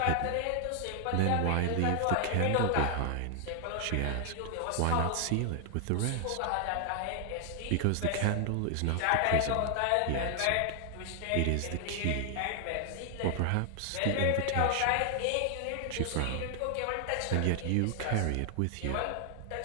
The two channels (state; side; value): different; both; correlation 0.00